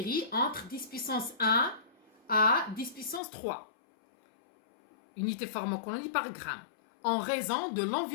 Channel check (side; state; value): right; drops out; at 3.2 s